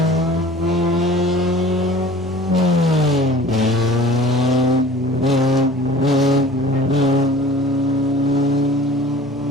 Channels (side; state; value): both; normal; correlation 0.45